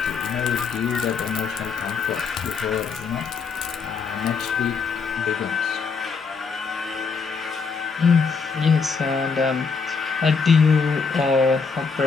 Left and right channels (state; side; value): quieter; right; 5.2 dB